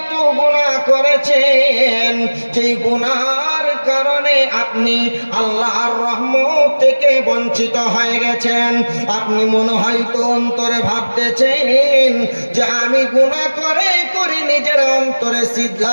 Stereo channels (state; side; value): inverted; both; correlation -1.00